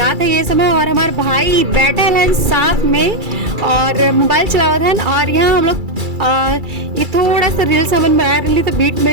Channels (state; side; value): late; left; 2.3 ms